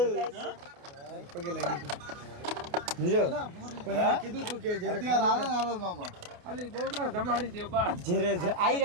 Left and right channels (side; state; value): left; late; 28 ms